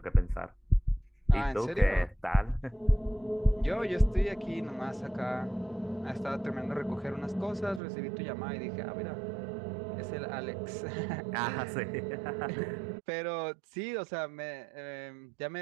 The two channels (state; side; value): drops out; left; at 7.8 s